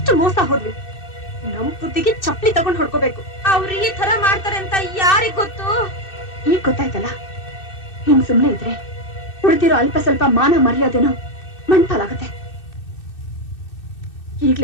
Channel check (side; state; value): right; late; 2.6 ms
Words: ಮೋಸ ಹೋದ್ವಿ. ನಮ್ ಬುದ್ಧಿಗೆ ಚಪ್ಪಲಿ ತಗೊಂಡ್ ಹೊಡ್ಕೋಬೇಕು. ಅವ್ರು ಈ ತರ ಮಾಡ್ತಾರೆ ಅಂತ ಯಾರಿಗ್ ಗೊತ್ತು? ಈಗ ಗೊತ್ತಾಯ್ತಲ್ಲ, ಇನ್ ಸುಮ್ನೆ ಇದ್ರೆ ಉಳಿದಿರೋ ಅಲ್ಪ ಸ್ವಲ್ಪ ಮಾನ ಮರ್ಯಾದೆನೋ ಮಣ್ಪಾಲಾಗತ್ತೆ.